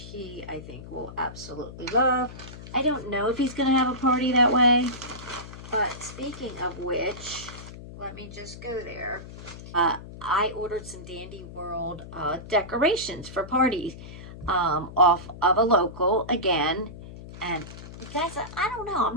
he, I think, will absolutely love. I don't know if he's going to have a party that way. But speaking of which, let me just go there. I ordered some Dandy World decorations for parties off of a local again. And guys, I don't know. I've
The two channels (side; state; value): left; noise; hum, 14 dB below the sound